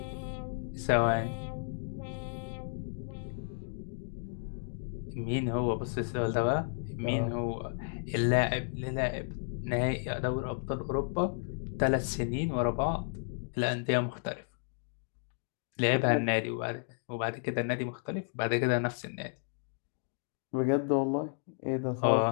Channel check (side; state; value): right; silent; digital silence